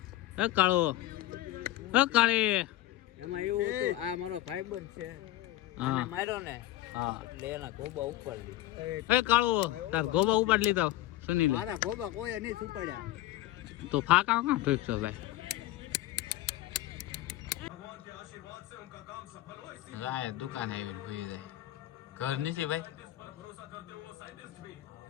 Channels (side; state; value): right; quieter; 15.5 dB